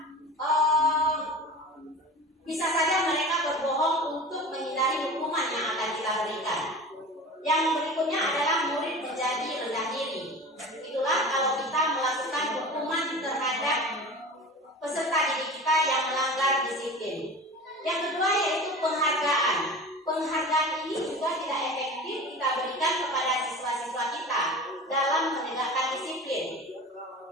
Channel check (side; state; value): both; normal; correlation 0.35